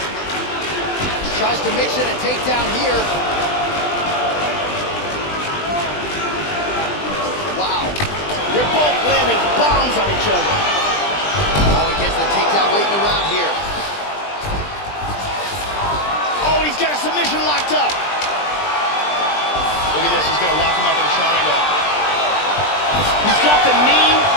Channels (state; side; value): late; right; 20 ms